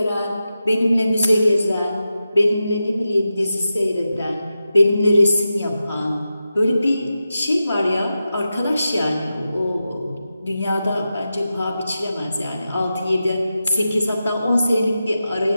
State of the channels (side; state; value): both; inverted; correlation -0.91